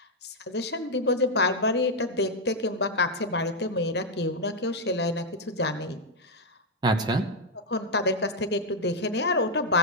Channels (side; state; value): both; normal; correlation 0.00